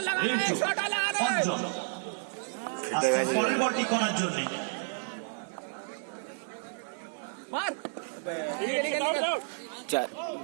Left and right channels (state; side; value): silent; left; 57 dB below the other